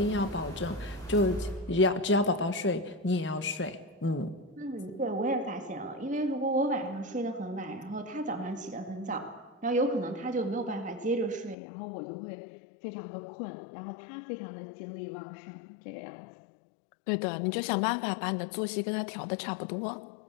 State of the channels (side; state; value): right; drops out; at 11.6 s